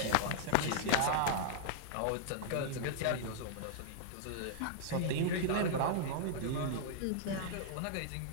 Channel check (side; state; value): both; different; correlation -0.01